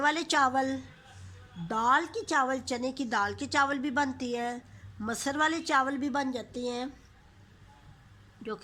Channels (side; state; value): both; identical; correlation 1.00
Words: चावल, दाल के चावल, चने की दाल के चावल भी बनती हैं। मसर वाले चावल भी बन जाते हैं जो